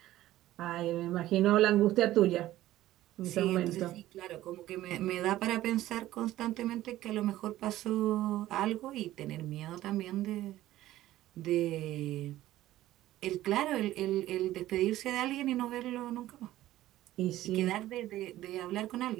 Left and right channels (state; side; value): quieter; left; 14.9 dB